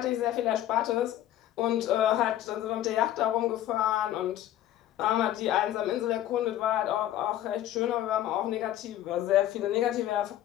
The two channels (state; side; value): quieter; right; 12.8 dB